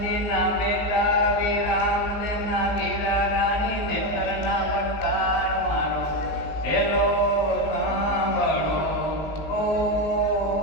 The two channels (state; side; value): late; right; 19 ms